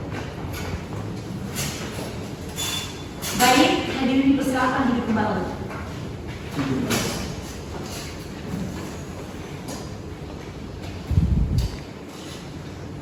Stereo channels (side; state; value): both; identical; correlation 1.00